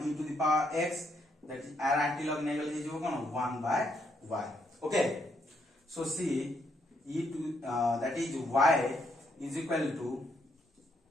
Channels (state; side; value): normal; both; correlation 0.74